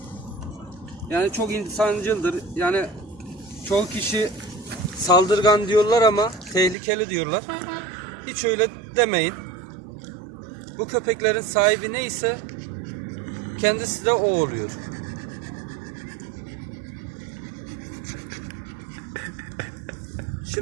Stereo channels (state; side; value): drops out; left; at 6.8 s